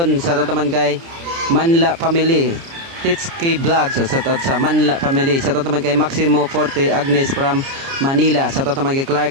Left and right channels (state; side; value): late; left; 29 ms